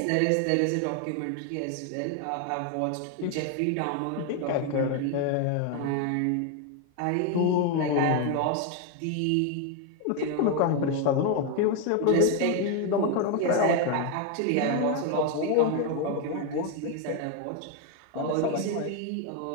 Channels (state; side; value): different; both; correlation 0.01